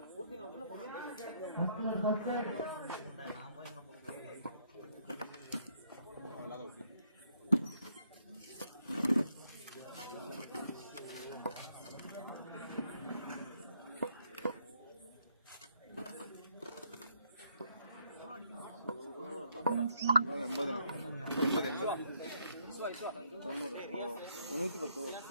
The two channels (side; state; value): both; inverted; correlation -0.71